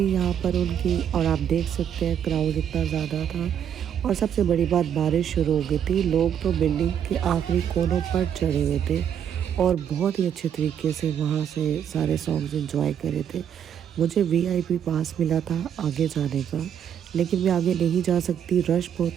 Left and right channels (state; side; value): quieter; left; 8.9 dB